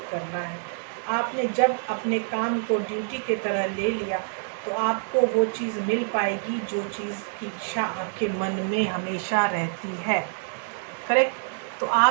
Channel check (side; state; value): left; silent; 61 dB below the other